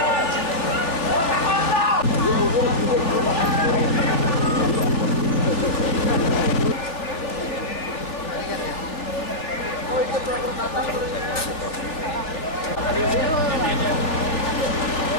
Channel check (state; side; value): late; right; 3.3 ms